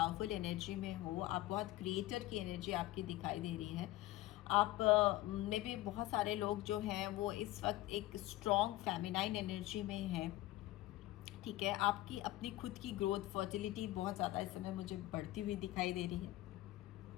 एनर्जी में हो, आप बहुत क्रिएटर की एनर्जी आपकी दिखाई दे रही है। आप में भी बहुत सारे लोग जो हैं वो इस वक्त एक स्ट्रॉन्ग फेमिनाइन एनर्जी में हैं, ठीक है। आपकी अपनी खुद की ग्रोथ, फर्टिलिटी बहुत ज़्यादा इस समय मुझे बढ़ती हुई दिखाई दे रही है।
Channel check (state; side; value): quieter; right; 16.8 dB